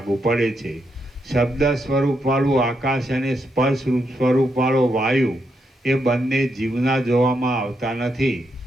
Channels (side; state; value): both; normal; correlation 0.81